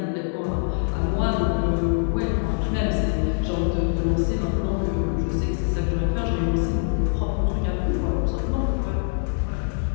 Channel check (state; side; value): silent; right; 63 dB below the other